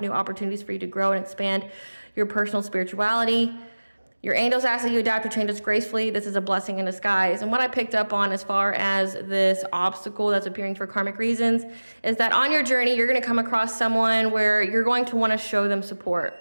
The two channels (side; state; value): both; inverted; correlation -1.00